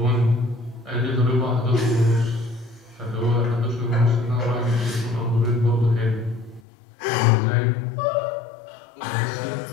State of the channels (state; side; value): drops out; right; at 6.6 s